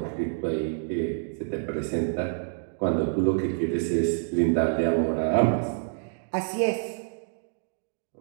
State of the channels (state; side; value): silent; left; digital silence